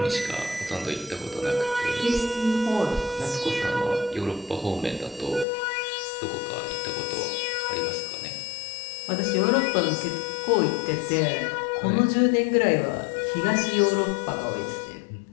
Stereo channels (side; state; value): right; drops out; at 5.5 s